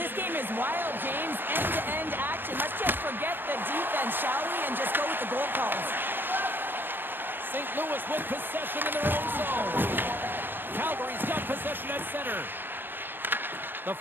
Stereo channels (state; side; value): late; left; 0.098 ms